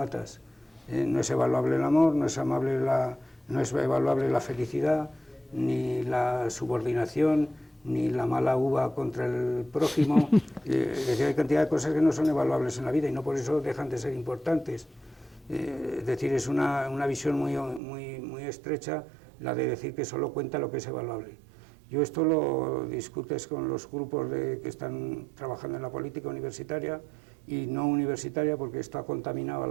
No es evaluable el amor, no es evaluable la felicidad, ni la subordinación, ni la mala uva contra el prójimo. Es decir, hay cantidad de cosas que no son evaluables en la vida y no por eso dejan de ser importantes. Es decir, es una visión muy estrecha la de decir que solo cuenta lo que es evaluable. Yo esto lo discutes con los grupos que están trabajando en la política universitaria y no universitaria, porque esto ha contaminado a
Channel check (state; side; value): drops out; left; at 17.8 s